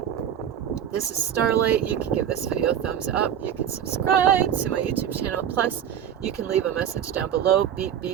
This is Starlight. You can give this video a thumbs up. You can subscribe to my YouTube channel. Plus, you can leave a message down below, beep,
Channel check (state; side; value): quieter; left; 9.5 dB